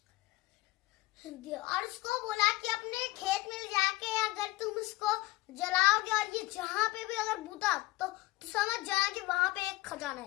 और उसको बोला कि अपने खेत में जाके अगर तुम इसको जलाओगे और ये जहाँ पे भी अगर बूता तो समझ जाना कि वहां पे एक खजाना है।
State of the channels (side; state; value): right; quieter; 19.7 dB